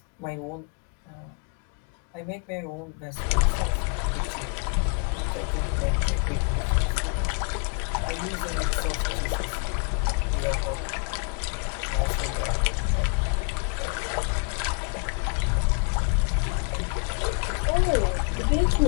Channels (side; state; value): right; quieter; 37.9 dB